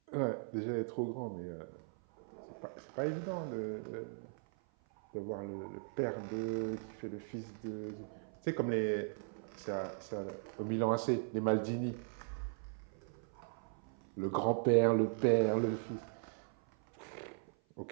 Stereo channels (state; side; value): silent; left; 52 dB below the other